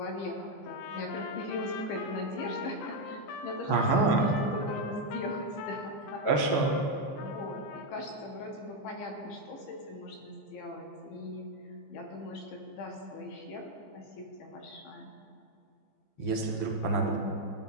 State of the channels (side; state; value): right; late; 14 ms